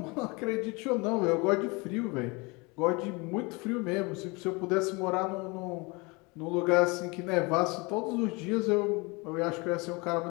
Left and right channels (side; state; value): right; quieter; 27.3 dB